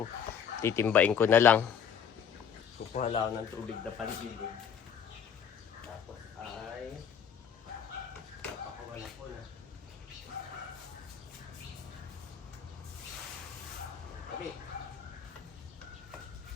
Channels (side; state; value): right; quieter; 7.9 dB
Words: Titimbain ko na lang. Kukuha lang ako ng tubig na pandilig. Tapos ay napakawala ko na. Okay.